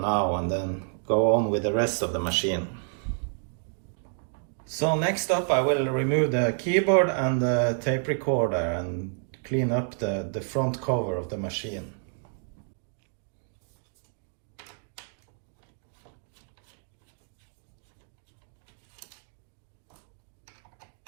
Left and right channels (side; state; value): left; silent; 58 dB below the other